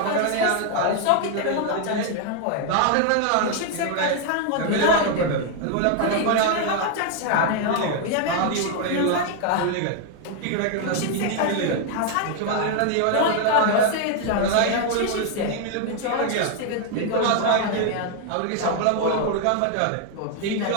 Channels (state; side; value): different; both; correlation 0.00